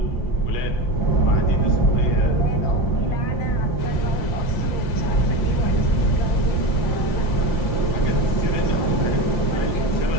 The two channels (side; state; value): right; late; 5.8 ms